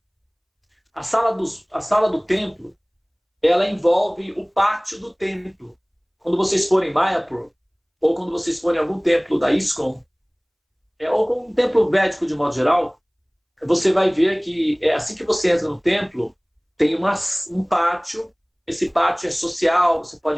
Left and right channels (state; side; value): identical; both; correlation 1.00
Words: A sala do templo, ela envolve o pátio do templo. Quando vocês forem em Mayapur, ou quando vocês forem em algum templo da ISKCON, ou com um templo védico de modo geral, você vai ver que assim que você entra no templo, tem um pátio. Esse pátio é social, você